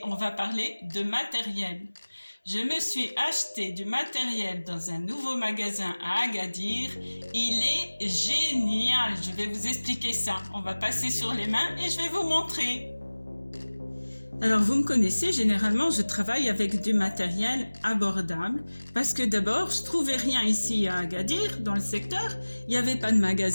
on va parler de matériel. Je me suis acheté du matériel dans un nouveau magasin à Agadir. Il est génial, je vais vous expliquer ça. On va passer sur les mains et je vais vous montrer. Alors vous me connaissez, généralement je travaille avec du matériel abordable parce que d'abord je trouvais rien ici à Agadir dans le secteur, il n'y avait pas de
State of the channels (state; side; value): inverted; both; correlation -1.00